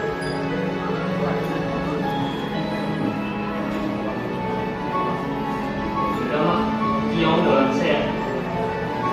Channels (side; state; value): both; identical; correlation 1.00